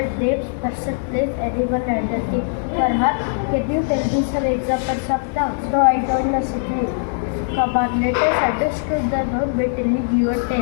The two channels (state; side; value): silent; right; digital silence